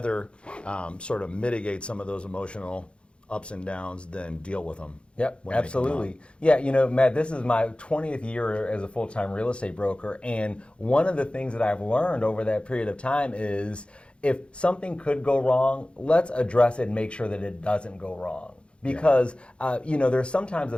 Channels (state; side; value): late; right; 0.057 ms